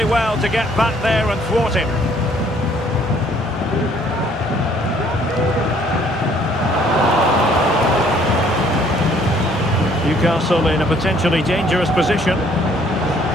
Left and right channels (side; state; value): both; normal; correlation 0.61